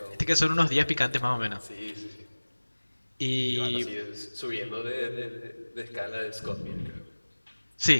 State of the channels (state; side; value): inverted; both; correlation -1.00